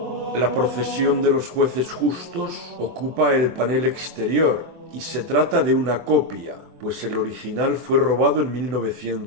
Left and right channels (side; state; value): left; late; 24 ms